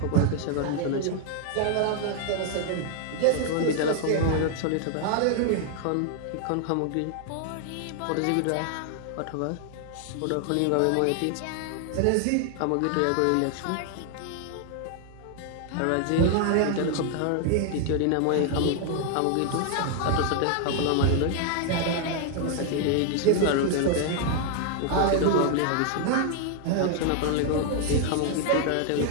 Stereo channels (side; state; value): both; different; correlation 0.00